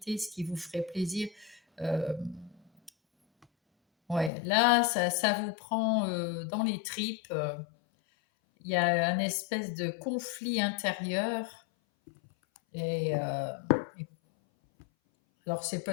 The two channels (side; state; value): right; drops out; at 4.3 s